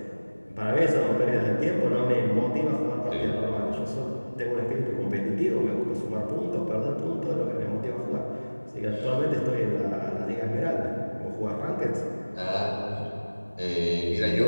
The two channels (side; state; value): both; inverted; correlation -1.00